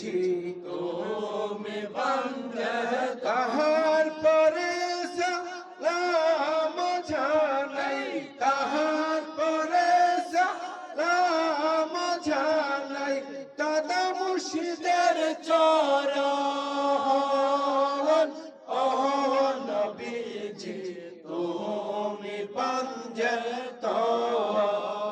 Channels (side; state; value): both; identical; correlation 1.00